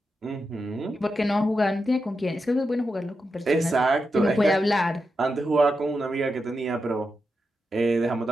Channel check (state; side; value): normal; both; correlation 0.87